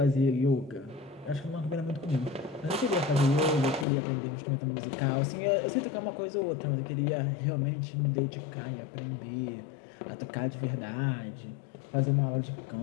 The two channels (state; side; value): drops out; right; at 3.9 s